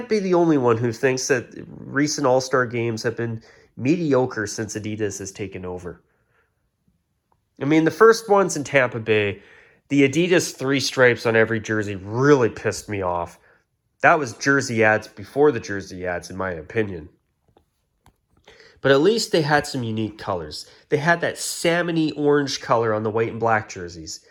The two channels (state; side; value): identical; both; correlation 1.00